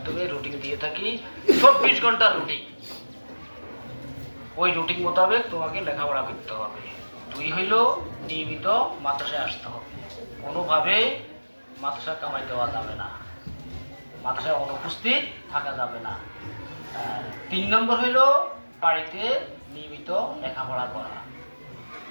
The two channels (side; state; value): both; inverted; correlation -1.00